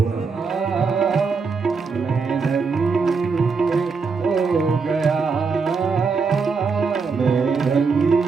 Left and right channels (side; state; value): left; quieter; 4.9 dB